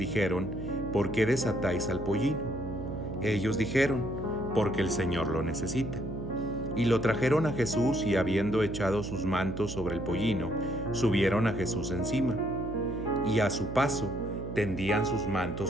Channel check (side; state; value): right; noise; hum, 8 dB below the sound